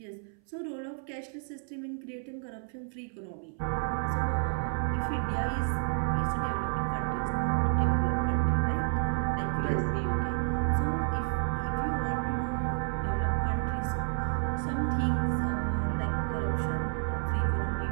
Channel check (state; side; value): silent; left; 58 dB below the other